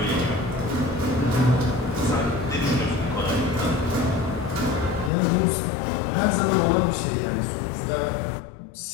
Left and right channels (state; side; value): drops out; right; at 5.1 s